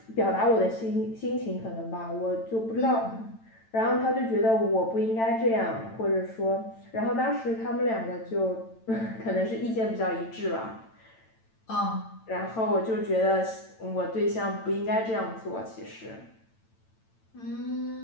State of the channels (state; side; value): late; right; 8.9 ms